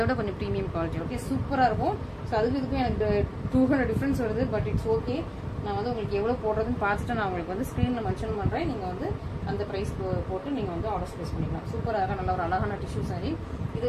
கொஞ்சம் ப்ரீமியம் குவாலிட்டி. ஓகே, சூப்பராக இருக்கும். ஸோ அதுக்கு இதுக்கும் எனக்கு 200 டிஃப்ரென்ஸ் வருது. But it's okay. நான் வந்து உங்களுக்கு எவ்வளோ போடுறதுன்னு பார்த்துட்டு நான் உங்களுக்கு வந்து ஸ்க்ரீனில் மென்ஷன் பண்ணுறேன். நீங்கள் வந்து அந்த ப்ரைஸ் போட்டு நீங்கள் வந்து ஆர்டர் ப்ளேஸ் பண்ணிக்கலாம். சூப்பராக நல்ல ஒரு அழகான டிஷ்யூ சாரி. இது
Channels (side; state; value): both; identical; correlation 1.00